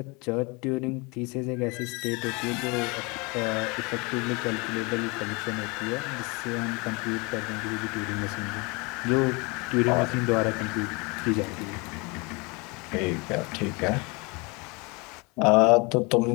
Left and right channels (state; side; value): quieter; right; 28.2 dB